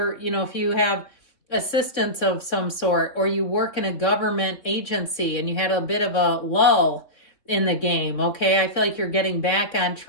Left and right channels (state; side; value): late; right; 3.6 ms